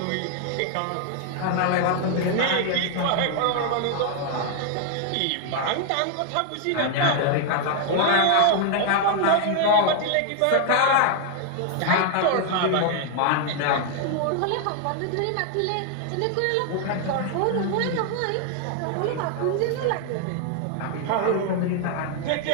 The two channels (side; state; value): both; different; correlation 0.00